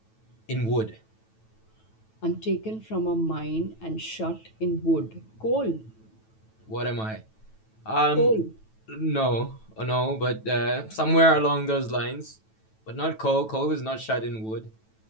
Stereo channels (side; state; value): right; late; 9.1 ms